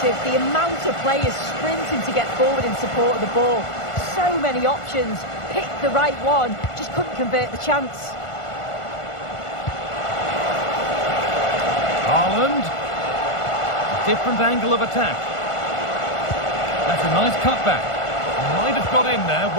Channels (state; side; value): late; right; 1.5 ms